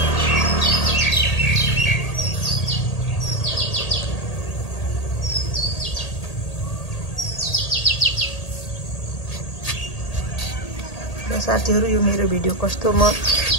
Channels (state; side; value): late; right; 1.8 ms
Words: साथीहरु, यो मेरो भिडियो कस्तो